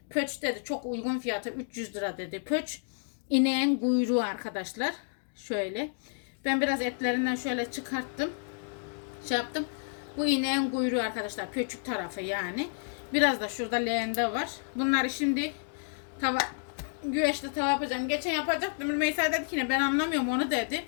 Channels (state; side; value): silent; right; digital silence